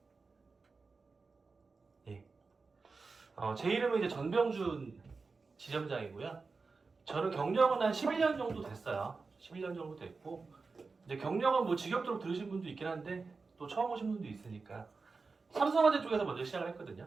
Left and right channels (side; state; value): left; quieter; 4.3 dB